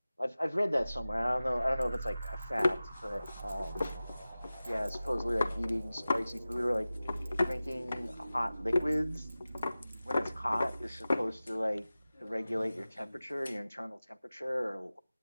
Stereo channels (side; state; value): both; inverted; correlation -0.96